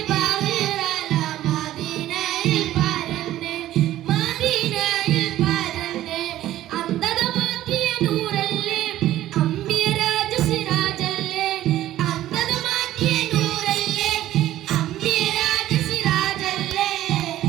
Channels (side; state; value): left; quieter; 13.8 dB